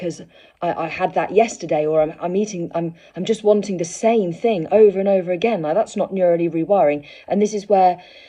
I had that yesterday, or I'm just wanting the same thing over and over again. Like, that's not neurally rewiring. And this is where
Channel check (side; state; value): both; identical; correlation 1.00